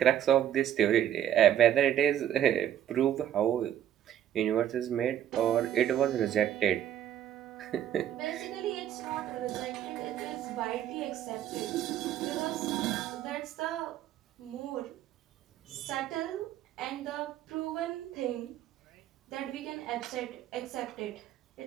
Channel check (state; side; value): quieter; left; 11.0 dB